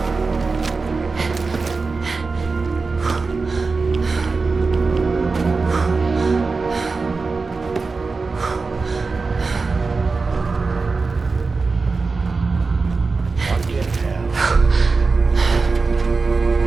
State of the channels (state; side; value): quieter; left; 4.2 dB